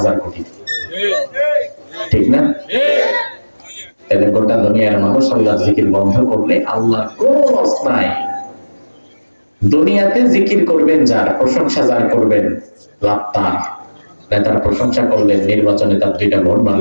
কোটি। ঠিক না? তাহলে গোটা দুনিয়ার মানুষ আল্লাহর জিকির বন্ধ করলে আল্লাহর কোনো লস নাই। দুনিয়াতে জিকির করবেন যার, প্রশংসা যার করবেন, লাভ তার। নেতার প্রশংসা করলেন, নির্বাচনে তার 2টা ভোট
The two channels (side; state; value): both; inverted; correlation -1.00